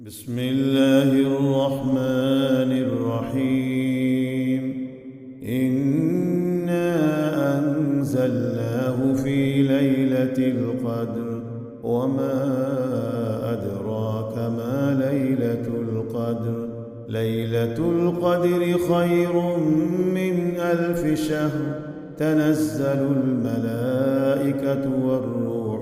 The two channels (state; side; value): identical; both; correlation 1.00